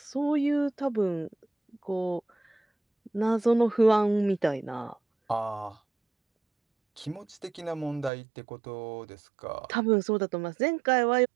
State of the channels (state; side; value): drops out; left; at 8.1 s